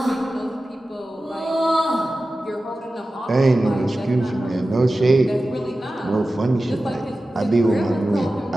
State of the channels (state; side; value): normal; both; correlation 0.95